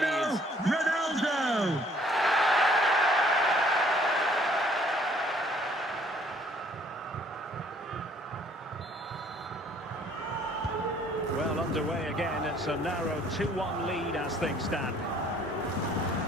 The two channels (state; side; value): normal; both; correlation 0.60